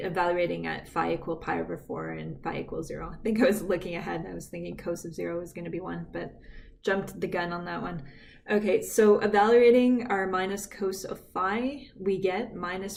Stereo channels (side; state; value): both; identical; correlation 1.00